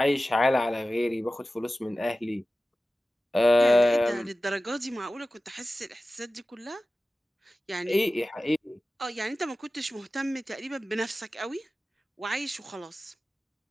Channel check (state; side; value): normal; both; correlation 0.95